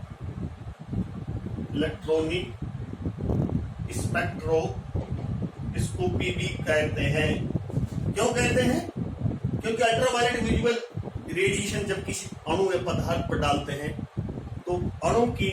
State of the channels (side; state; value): both; identical; correlation 1.00